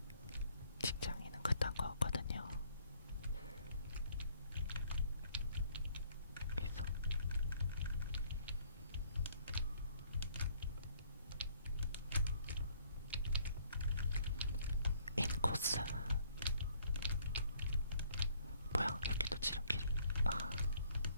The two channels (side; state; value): both; inverted; correlation -0.63